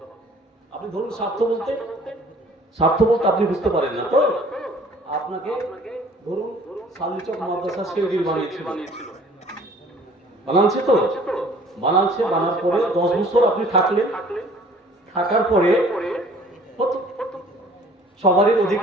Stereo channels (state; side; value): normal; both; correlation 0.53